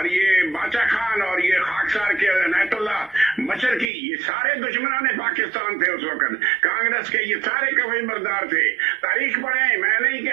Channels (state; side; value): drops out; left; at 3.9 s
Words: ये बाचा खान और ये खाकसार के अनायतुल्लाह मशरकी, ये सारे दुश्मनान पाकिस्तान थे उस वक्त। कांग्रेस के ये सारे कवि बरदार थे। तारीख पढ़े, मैं नहीं